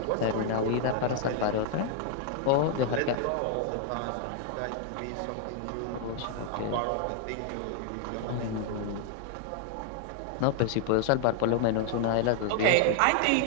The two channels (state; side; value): different; both; correlation 0.00